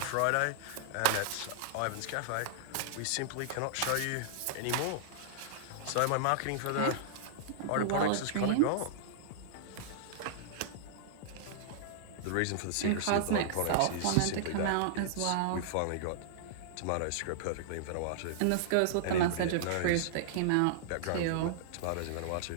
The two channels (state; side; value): different; both; correlation -0.02